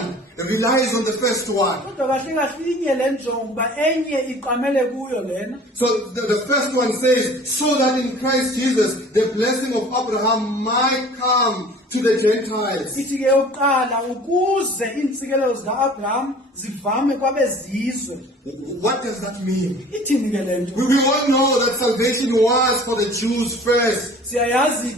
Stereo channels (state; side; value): normal; both; correlation 0.47